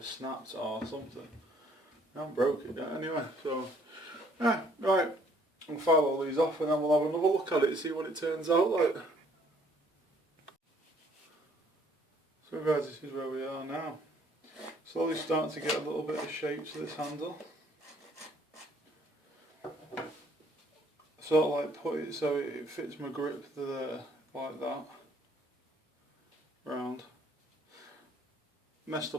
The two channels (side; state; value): both; normal; correlation 0.62